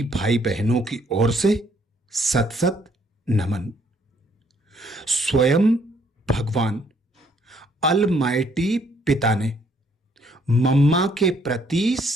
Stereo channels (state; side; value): normal; both; correlation 0.66